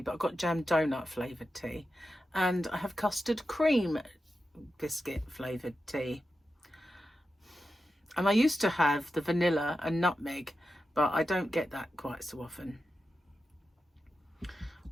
but I've got jam donut flavoured tea. And I have custard cream biscuit flavoured tea. And I used to have the vanilla and nutmeg, but I don't get that quite so often.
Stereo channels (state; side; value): normal; both; correlation 0.90